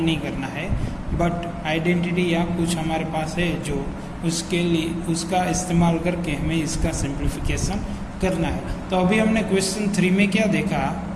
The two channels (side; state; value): both; identical; correlation 1.00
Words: नहीं करना है, बट आइडेंटिटी या कुछ हमारे पास है जो उसके लिए उसका इस्तेमाल करके हमें इसका सिंप्लीफिकेशन करना है। तो अभी हमने क्वेश्चन 3 में क्या देखा,